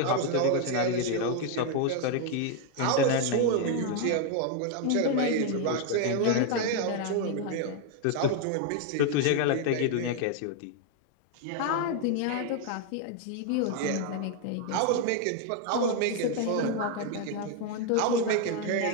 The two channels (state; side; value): different; both; correlation 0.01